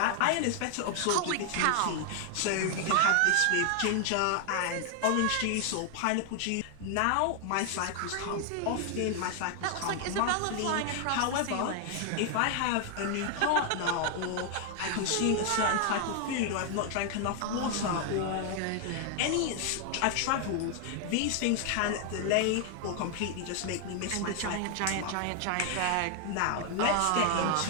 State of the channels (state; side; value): different; both; correlation 0.00